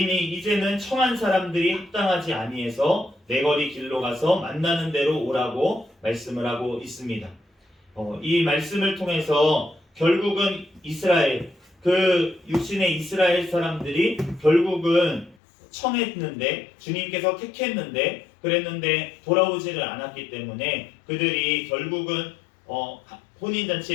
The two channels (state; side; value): drops out; right; at 15.4 s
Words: 이제는 청한 사람들이 합당하지 아니해서 내거리 길로 가서 만나는 대로 오라고 말씀을 하고 있습니다. 이 말씀을 통해서 결국은 이스라엘, 그 육신의 이스라엘 사람들이 결국은 청했는데 주님께서 택했는데 그랬는데 돌아오지를 않았기 때문에 그들이 결국은